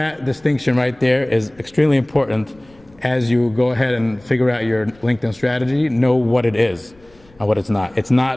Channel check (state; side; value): noise; left; rumble, 29 dB below the sound